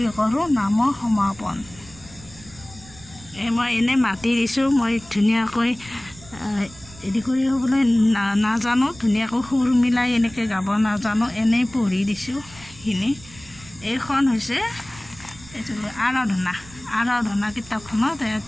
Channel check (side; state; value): right; noise; rumble, 21 dB below the sound